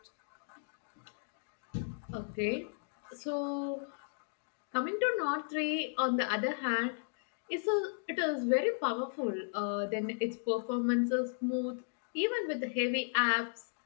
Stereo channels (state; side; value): silent; right; digital silence